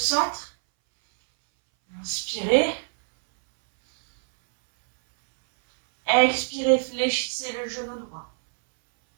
Inspirez. Expirez, fléchissez le genou droit.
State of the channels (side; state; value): left; silent; 62 dB below the other